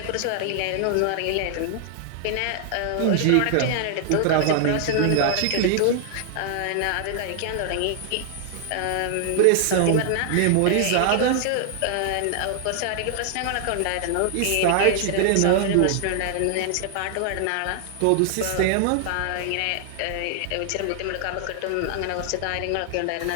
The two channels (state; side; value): different; both; correlation 0.00